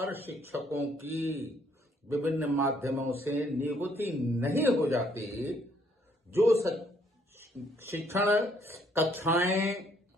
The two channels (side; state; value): both; normal; correlation 0.67